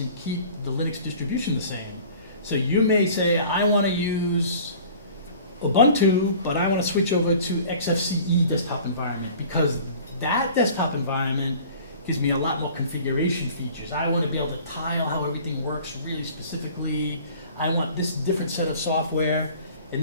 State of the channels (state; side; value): inverted; both; correlation -0.46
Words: and keep the Linux distribution the same. So you may say, I want to use Ubuntu, but I want to switch over to XFCE desktop environment because that desktop environment gives me a lot more configuration features. I want to be able to tile how everything works really specifically. I want this different set of software,